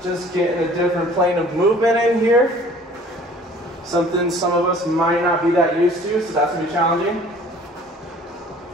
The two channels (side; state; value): both; normal; correlation 0.51